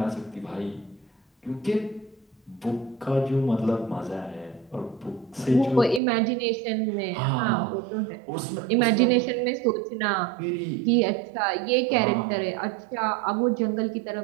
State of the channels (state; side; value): drops out; left; at 6.0 s